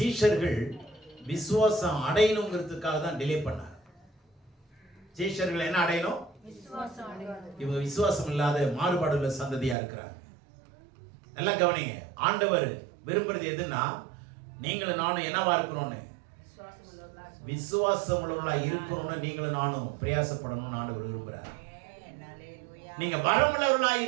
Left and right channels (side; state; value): left; drops out; at 9.8 s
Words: விசுவாசம் அடையணுங்கிறதுக்காக தான் டிலே பண்ணார். சீஷர்கள் என்ன அடையணும்? இவங்க விசுவாசம் இல்லாத மாறுபாடுள்ள சந்ததியா இருக்கிறாங்க. நல்லா கவனிங்க. ஆண்டவர் விரும்புறது எதுன்னா, நீங்களும் நானும் என்னவா இருக்கிறோம்னு, விசுவாசம் உள்ளவர்களா இருக்கிறோம்னு நீங்களும் நானும் பிரயாசப்படணும்னு ஆண்டவர் விரும்புறார். நீங்க வரமுள்ளவர்களா